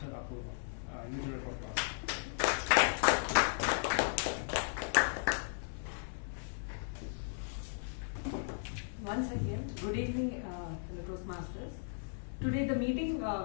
Apoorva. Usual for class. Once again, good evening, fellow Toastmasters. Today the meeting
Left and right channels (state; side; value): silent; right; 54 dB below the other